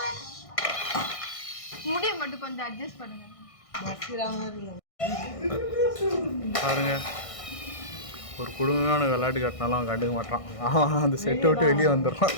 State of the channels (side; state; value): right; late; 1.6 ms